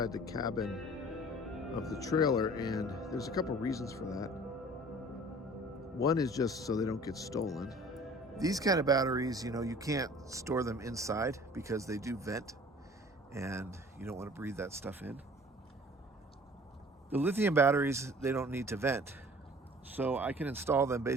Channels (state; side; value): normal; both; correlation 0.48